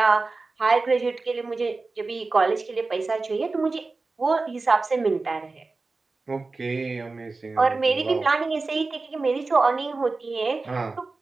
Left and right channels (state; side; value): quieter; left; 3.7 dB